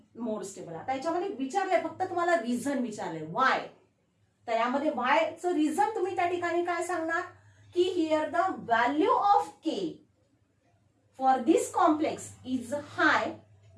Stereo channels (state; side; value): identical; both; correlation 1.00